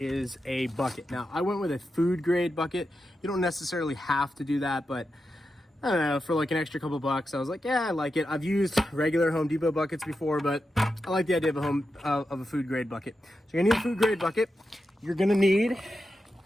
a bucket. Now, I went with a food grade bucket. You don't necessarily have to do that, but I don't know, for like an extra couple bucks, I was like, yeah, I like it. I've used regular Home Depot buckets before, but I like the idea of a food grade bucket. So you're gonna need a food grade bucket. You're gonna need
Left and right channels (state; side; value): normal; both; correlation 0.89